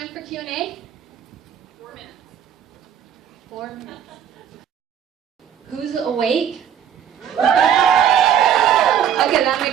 for Q&A? 4 minutes. 4 minutes. Who's awake? Okay, that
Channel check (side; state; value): left; quieter; 9.0 dB